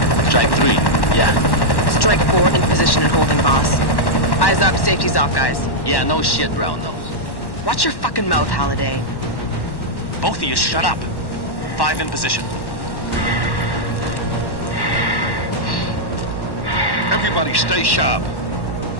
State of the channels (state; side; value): late; right; 1.1 ms